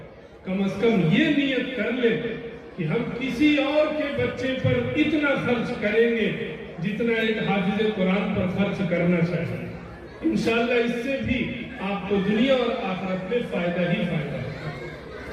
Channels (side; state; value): both; identical; correlation 1.00